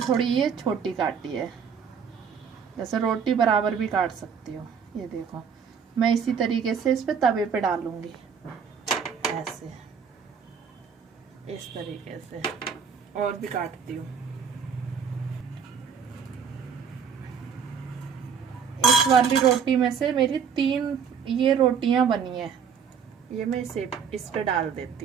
ये छोटी काटी है। जैसे रोटी बराबर भी काट सकती हो। ये देखो मैं इसी तरीके से इस पे तवे पे डालूंगी ऐसे, इस तरीके से। और भी काटती हूँ। इस वाली रोटी में से मेरी 3 ये रोटियां बनी है। ये मैं इस पे डाल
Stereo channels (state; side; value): quieter; left; 6.8 dB